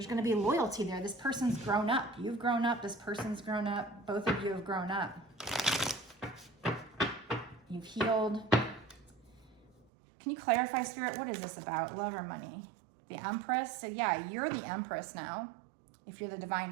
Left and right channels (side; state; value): left; drops out; at 9.9 s